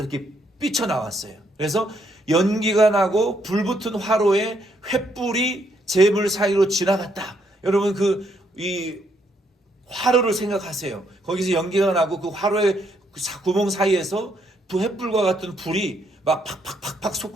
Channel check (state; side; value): normal; both; correlation 0.73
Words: 삐쳐나왔어요. 그래서 연기가 나고 불붙은 화로에 횃불이 제물 사이로 지나갔다. 여러분 이 화로를 생각하세요. 거기서 연기가 나고 그 화로의 구멍 사이에서 그 횃불과 같은 불이 막 팍팍팍팍